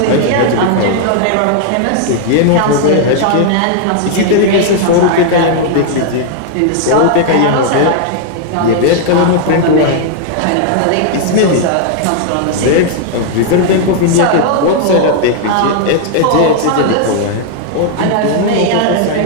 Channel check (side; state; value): both; different; correlation -0.01